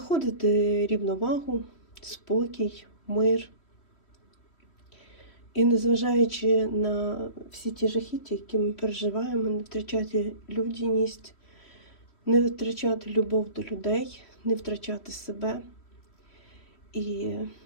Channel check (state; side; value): late; right; 3.1 ms